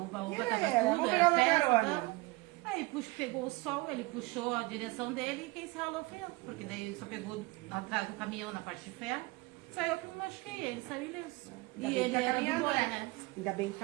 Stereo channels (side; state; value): left; quieter; 23.1 dB